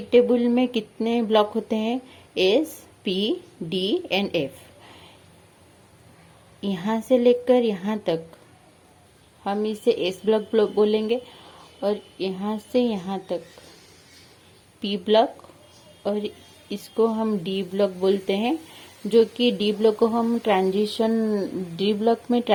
टेबल में कितने ब्लॉक होते हैं? S, P, D and F। यहाँ से लेकर यहाँ तक हम इसे S ब्लॉक बोलेंगे और यहाँ से यहाँ तक P ब्लॉक, और इसको हम D ब्लॉक बोलते हैं, जो कि D ब्लॉक को हम D ब्लॉक में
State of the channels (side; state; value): both; identical; correlation 1.00